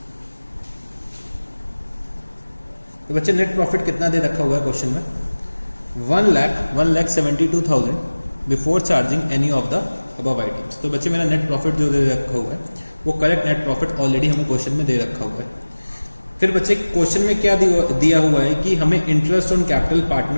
तो बच्चे नेट प्रॉफिट कितना दे रखा हुआ है क्वेश्चन में? 1,72,000 before charging any of the above items. तो बच्चे मेरा नेट प्रॉफिट जो दे रखा हुआ है वो करेक्ट नेट प्रॉफिट ऑलरेडी हमें क्वेश्चन में दे रखा हुआ है। फिर बच्चे क्वेश्चन में क्या दिया हुआ है कि हमें इंटरेस्ट ऑन कैपिटल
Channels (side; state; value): both; inverted; correlation -1.00